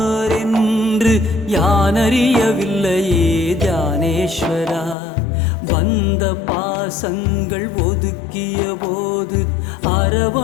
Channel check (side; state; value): right; drops out; at 5.0 s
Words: யானறியவில்லையே தியானேஸ்வரா. வந்த பாசங்கள் ஒதுக்கிய போது